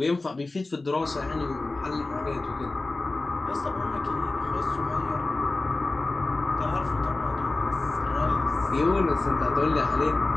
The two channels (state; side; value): quieter; right; 3.2 dB